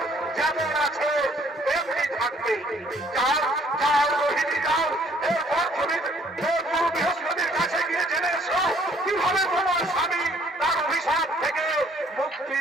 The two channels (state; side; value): normal; both; correlation 0.61